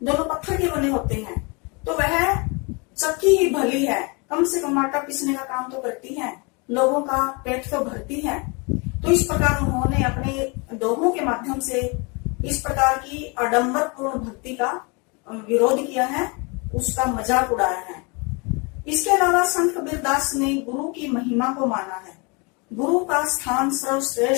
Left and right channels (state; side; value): quieter; right; 30.4 dB